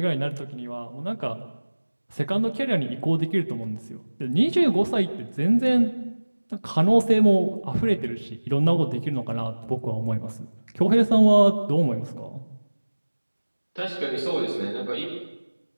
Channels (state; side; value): inverted; both; correlation -1.00